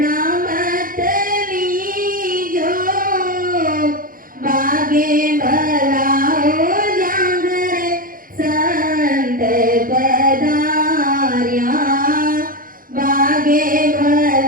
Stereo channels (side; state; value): left; late; 0.41 ms